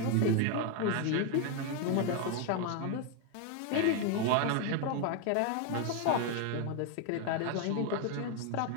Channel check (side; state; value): both; different; correlation 0.01